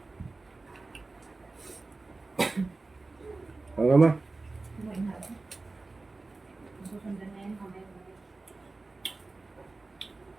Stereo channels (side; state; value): left; quieter; 3.5 dB